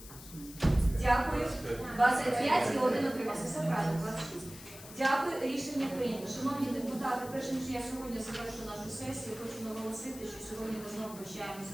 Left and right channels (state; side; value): noise; left; hiss, 16 dB below the sound